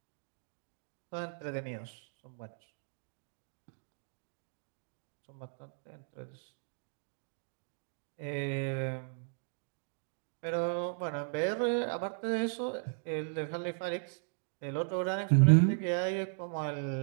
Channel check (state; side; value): silent; left; digital silence